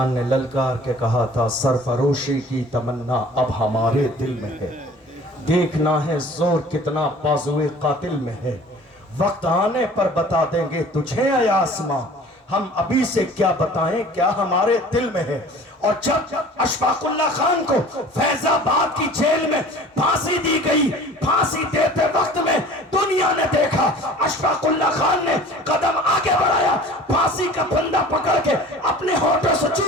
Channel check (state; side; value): normal; both; correlation 0.46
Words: نے للکار کے کہا تھا سرفروشی کی تمنا اب ہمارے دل میں ہے، دیکھنا ہے زور کتنا بازوئے قاتل میں ہے، وقت آنے پر بتا دیں گے تجھے اے آسماں، ہم ابھی سے کیا بتائیں کیا ہمارے دل میں ہے۔ اور جب اشفاق اللہ خان کو فیض آباد کی جیل میں پھانسی دی گئی، پھانسی دیتے وقت میں دنیا نے دیکھا اشفاق اللہ خان نے قدم آگے بڑھایا، پھانسی کا پھندا پکڑ کے اپنے ہونٹوں سے